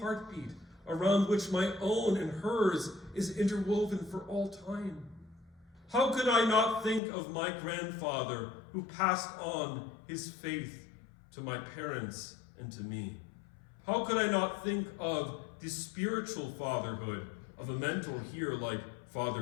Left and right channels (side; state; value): right; drops out; at 7.0 s